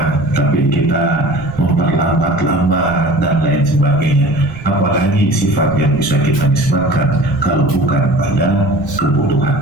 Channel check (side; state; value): right; noise; rumble, 17 dB below the sound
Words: tapi kita memperlambat-lambat dan lain sebagainya. Apalagi sifat yang bisa kita nisbatkan kalau bukan pada